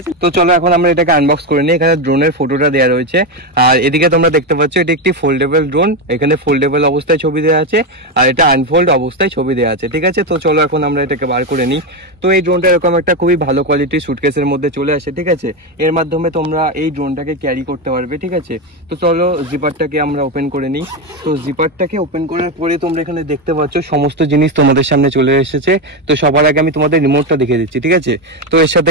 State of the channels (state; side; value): normal; both; correlation 0.11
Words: তো চলো এখন আমরা এটাকে আনবক্স করে নিই। এখানে ড্রোনের ফটোটা দেওয়া রয়েছে, আর এদিকে তোমরা দেখতে পাচ্ছ এটা একটি ফোল্ডেবল ড্রোন। এখানে ফোল্ডেবল অবস্থায় ছবি দেওয়া আছে, আর এটা আনফোল্ড অবস্থায় ছবি দেওয়া আছে। ঠিক আছে, তো চলো এখন আমরা এটাকে বার করে নিই। তো এই ড্রোনটা এরকম একটা খুবই ভালো কোয়ালিটির সুটকেসের মধ্যে চলে আসে। ঠিক আছে, এর মাধ্যমে তোমরা এই ড্রোনটাকে ক্যারি করতে পারবে। ঠিক আছে, তো চলো জিপারটাকে আমরা ওপেন করে নিই। তো জিপারটাকে ওপেন করার পরে তোমরা এখানে দেখতে পাচ্ছ সমস্ত জিনিস তোমাদের সামনে চলে এসেছে। তো সবার আগে আমি তোমাদের রিমোটটা দেখিয়ে দিচ্ছি। ঠিক আছে, তো এর সাথে